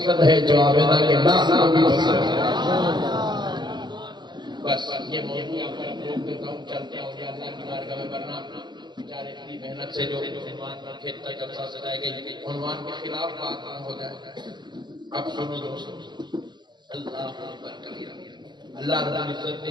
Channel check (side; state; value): left; late; 0.21 ms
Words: ہے، جو عابدہ کے ناس کو بھی پسند ہے۔ بس یہ موضوع آپ پر روک دیتا ہوں، چلتے ہیں اور اللہ کی بارگاہ میں ورنہ بیچارے اتنی محنت سے جو عنوان پر کھیلتا جلسہ سجائے گئی، عنوان کے خلاف بات نہ ہو جائے۔ اب سنو دوستو، اللہ اکبر کبیرہ، اللہ رب العزت